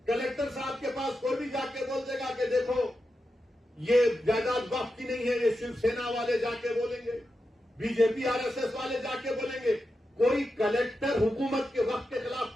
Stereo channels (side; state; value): both; normal; correlation 0.89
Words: कलेक्टर साहब के पास कोई भी जाके बोल देगा कि देखो ये जायदाद वक्फ की नहीं है, ये शिवसेना वाले जाके बोलेंगे, बीजेपी आरएसएस वाले जाके बोलेंगे। कोई कलेक्टर हुकूमत के वक्त के खिलाफ